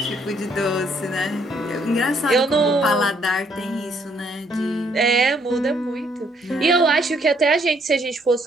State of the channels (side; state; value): both; normal; correlation 0.68